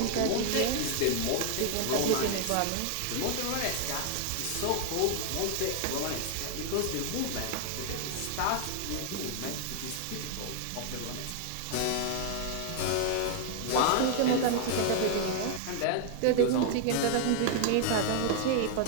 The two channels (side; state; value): both; different; correlation 0.00